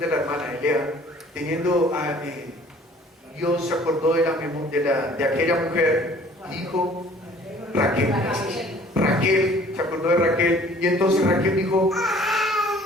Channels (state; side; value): normal; both; correlation 0.53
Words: la hermana Elea, Dios se acordó de aquella mujer, dijo Raquel, se acordó de Raquel, y entonces Raquel dijo,